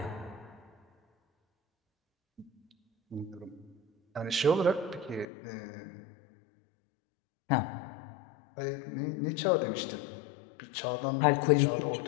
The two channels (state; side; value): drops out; right; at 5.2 s